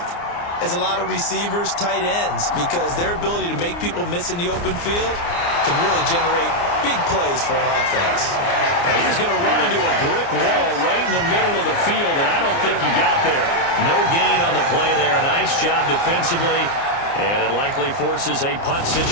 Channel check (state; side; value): late; right; 29 ms